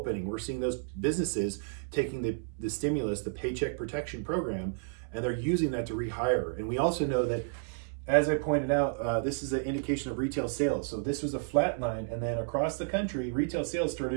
We're seeing those businesses taking the stimulus, the Paycheck Protection Program, and they're using that to rehire. And we also know that, as I pointed out, this is an indication of retail sales. So this was a flat line, and then across the country, retail sales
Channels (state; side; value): silent; left; 57 dB below the other